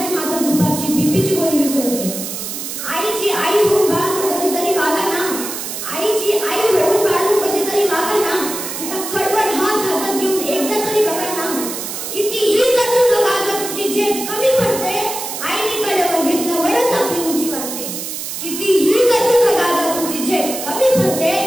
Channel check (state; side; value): noise; right; hiss, 6 dB below the sound